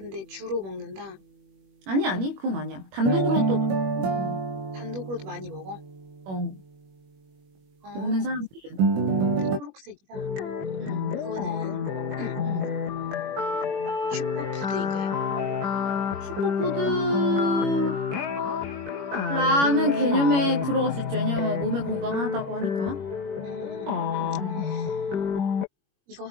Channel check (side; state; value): left; late; 21 ms